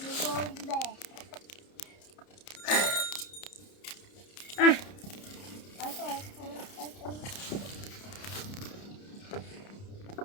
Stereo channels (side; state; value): right; late; 30 ms